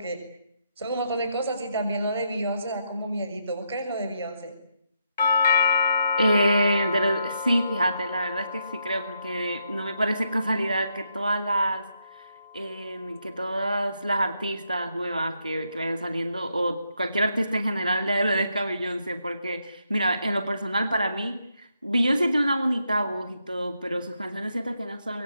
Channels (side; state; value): both; inverted; correlation -0.79